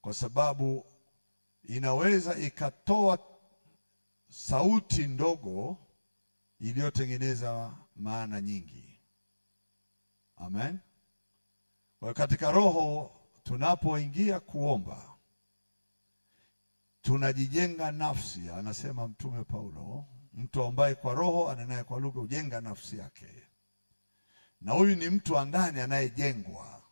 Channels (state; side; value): inverted; both; correlation -1.00